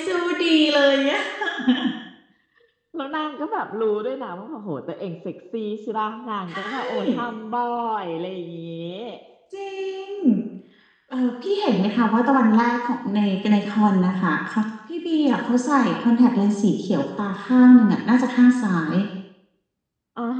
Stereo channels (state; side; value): identical; both; correlation 1.00